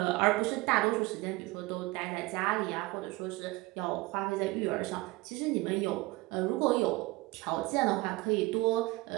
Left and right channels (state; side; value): quieter; left; 21.5 dB